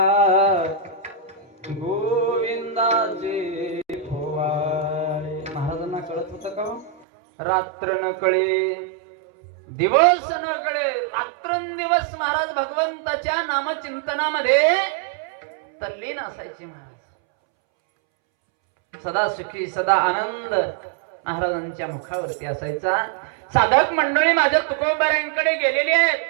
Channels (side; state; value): left; drops out; at 7.1 s